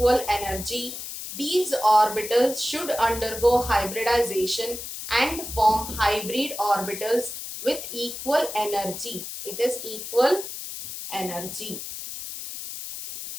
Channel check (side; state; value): left; noise; hiss, 8 dB below the sound